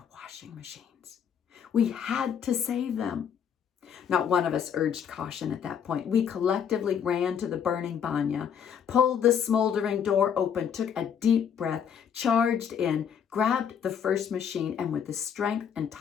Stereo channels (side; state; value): right; quieter; 7.9 dB